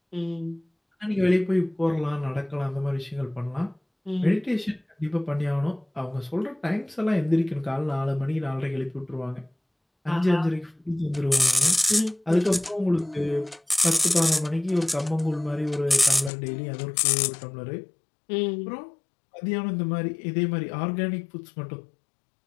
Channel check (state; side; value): drops out; right; at 16.3 s